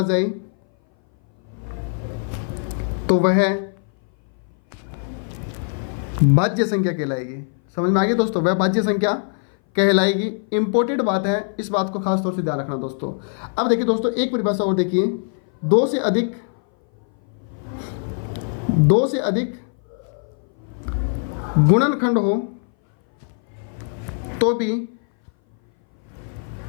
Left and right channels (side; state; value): right; silent; 59 dB below the other